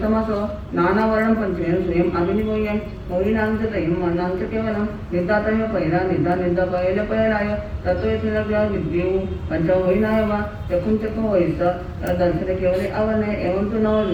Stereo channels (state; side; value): identical; both; correlation 1.00